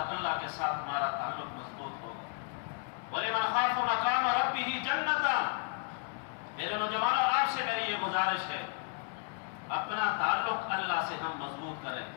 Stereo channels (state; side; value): quieter; right; 36.6 dB